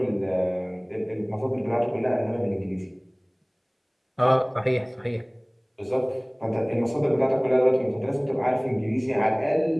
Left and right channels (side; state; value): both; identical; correlation 1.00